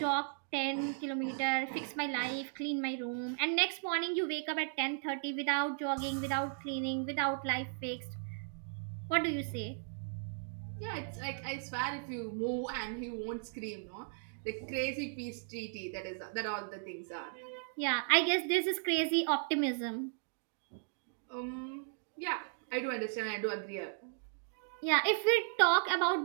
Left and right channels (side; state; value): left; silent; digital silence